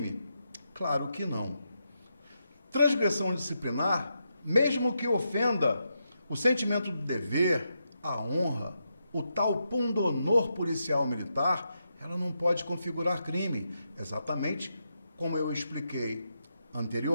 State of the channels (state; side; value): inverted; both; correlation -0.84